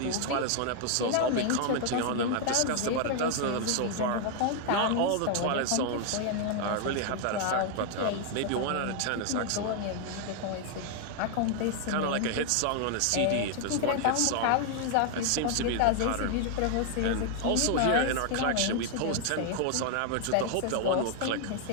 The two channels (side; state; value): both; different; correlation 0.00